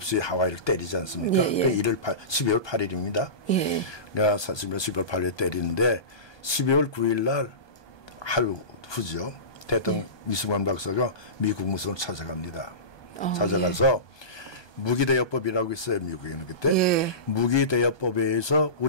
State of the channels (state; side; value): late; right; 1.2 ms